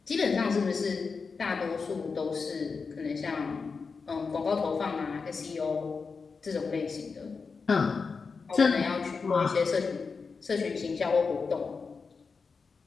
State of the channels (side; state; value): right; quieter; 4.9 dB